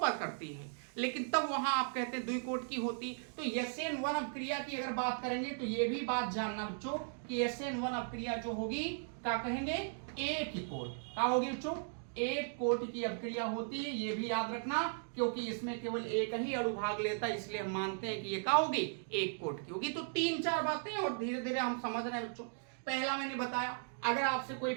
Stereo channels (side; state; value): left; silent; digital silence